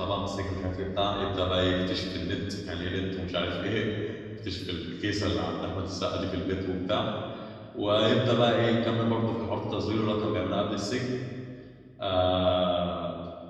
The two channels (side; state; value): both; identical; correlation 1.00